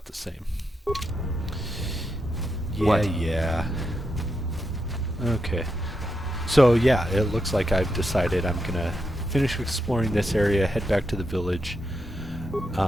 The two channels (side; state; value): both; normal; correlation 0.84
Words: the same. Yeah. Okay. So yeah, it looks like I've decided I'm gonna finish exploring this area, head back to the village,